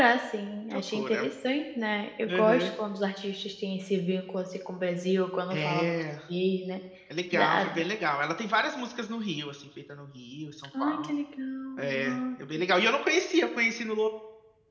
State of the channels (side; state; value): both; identical; correlation 1.00